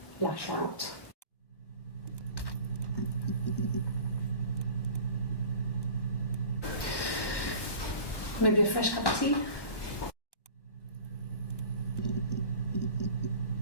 lash out. Maybe a fresh cup of tea?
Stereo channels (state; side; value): late; right; 1.1 ms